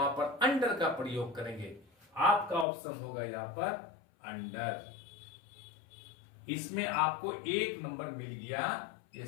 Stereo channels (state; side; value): drops out; right; at 2.7 s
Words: पर अंडर का प्रयोग करेंगे। आपका ऑप्शन होगा यहां पर अंडर। इसमें आपको एक नंबर मिल गया। ये